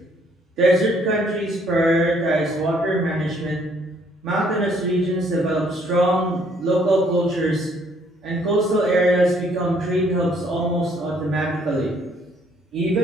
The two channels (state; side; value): normal; both; correlation 0.65